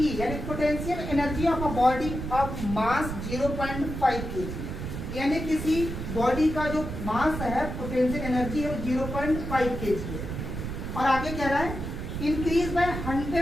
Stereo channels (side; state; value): right; noise; rumble, 6 dB below the sound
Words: यानी potential energy of a body of mass 0.5 kg, यानी किसी बॉडी का जो मास है पोटेंशियल एनर्जी है वो 0.5 kg है। और आगे कह रहा है increase by